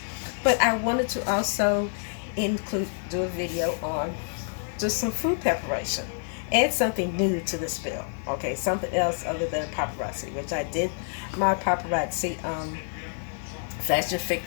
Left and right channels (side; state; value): right; silent; digital silence